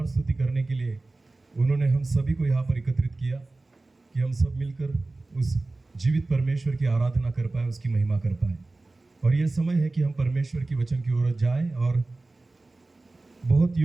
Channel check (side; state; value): left; quieter; 3.2 dB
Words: स्तुति करने के लिए उन्होंने हम सभी को यहाँ पर एकत्रित किया कि हम सब मिलकर उस जीवित परमेश्वर की आराधना कर पाए, उसकी महिमा कर पाए। और यह समय है कि हम परमेश्वर की वचन की ओर जाएं और बहुत